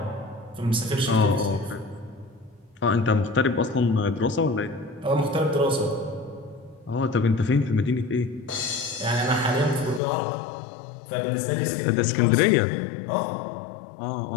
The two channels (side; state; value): right; drops out; at 10.0 s